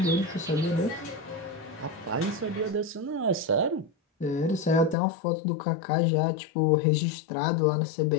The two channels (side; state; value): right; drops out; at 5.0 s